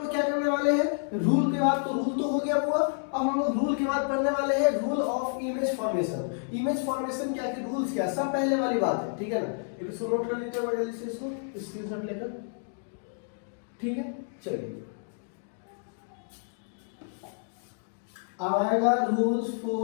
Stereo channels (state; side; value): silent; right; digital silence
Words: क्या करने वाले हैं, रूल के बाद, तो रूल तो हो गया हुआ, अब हम लोग रूल के बाद पढ़ने वाले हैं rule of image formation. Image formation क्या के रूल्स क्या, सब पहले वाली बात है, ठीक है ना। एक इसको नोट कर लीजिए जल्दी से, इसको स्क्रीनशॉट लेकर, ठीक है। चलिए अब आएगा rules